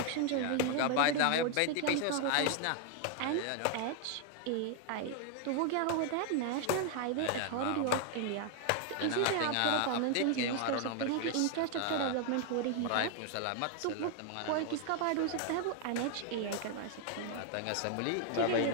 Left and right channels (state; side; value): different; both; correlation 0.00